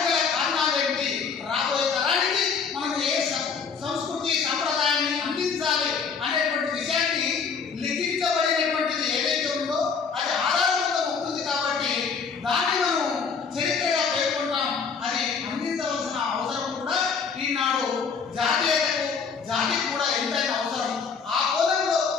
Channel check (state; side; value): quieter; right; 5.7 dB